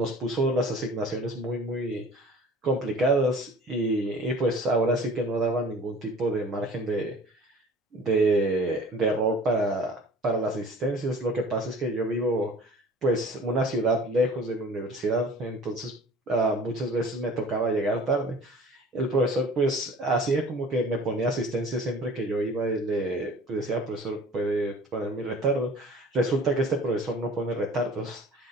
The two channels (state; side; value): normal; both; correlation 0.46